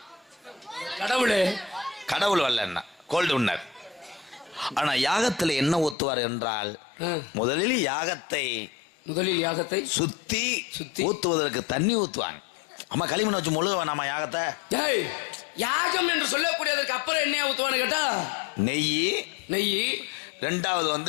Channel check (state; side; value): drops out; right; at 6.0 s